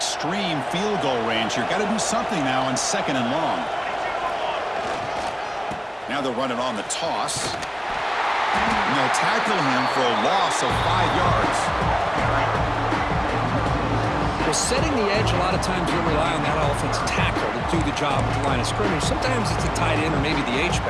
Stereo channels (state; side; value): identical; both; correlation 1.00